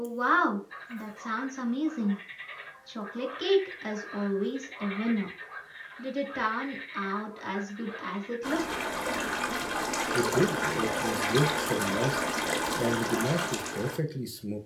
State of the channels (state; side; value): identical; both; correlation 1.00